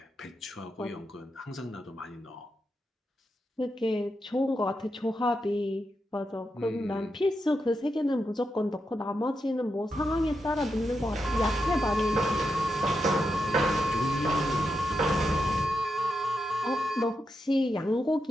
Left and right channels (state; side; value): normal; both; correlation 0.86